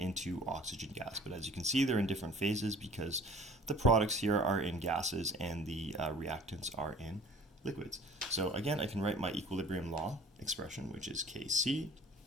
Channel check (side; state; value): both; normal; correlation 0.49